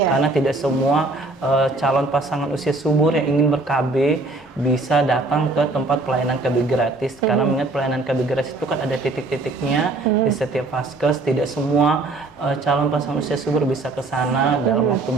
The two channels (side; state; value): left; quieter; 3.2 dB